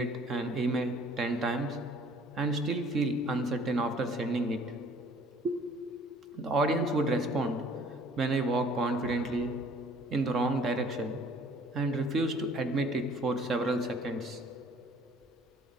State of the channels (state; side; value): normal; both; correlation 0.54